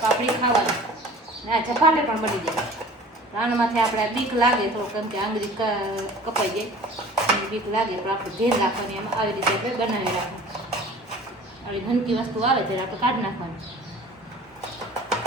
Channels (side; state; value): both; normal; correlation 0.45